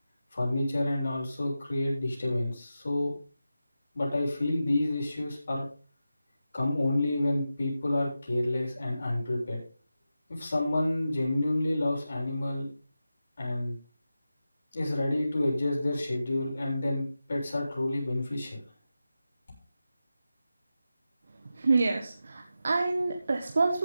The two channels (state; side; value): inverted; both; correlation -0.92